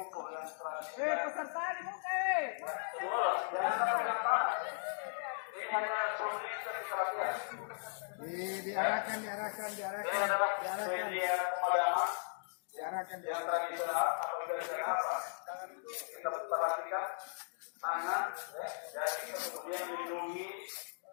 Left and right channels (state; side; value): silent; right; digital silence